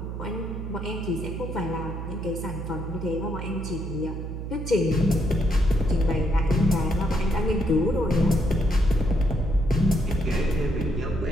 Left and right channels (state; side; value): noise; right; hum, 6 dB below the sound